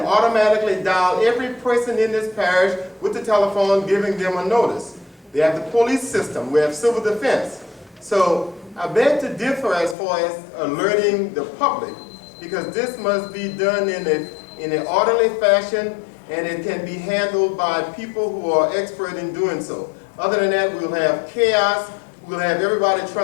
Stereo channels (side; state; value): right; drops out; at 10.0 s